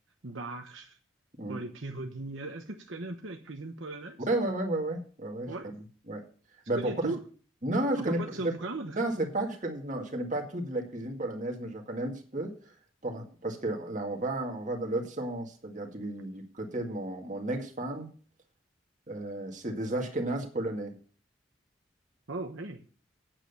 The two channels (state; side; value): normal; both; correlation 0.41